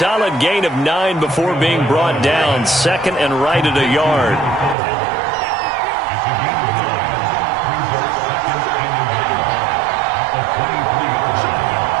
gain of 9 before being brought down. Second and right at a yard.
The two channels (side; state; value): left; drops out; at 4.8 s